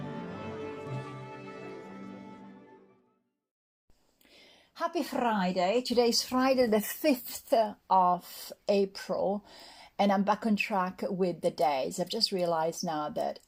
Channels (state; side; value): identical; both; correlation 1.00